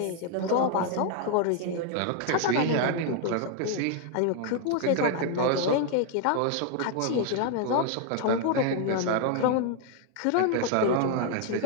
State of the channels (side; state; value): both; different; correlation 0.00